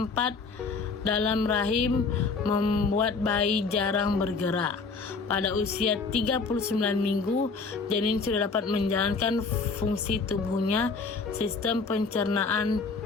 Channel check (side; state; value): right; quieter; 4.5 dB